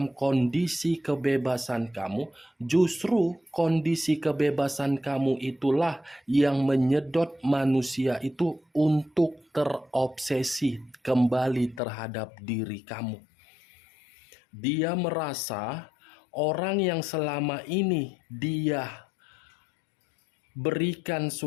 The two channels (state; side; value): drops out; right; at 11.8 s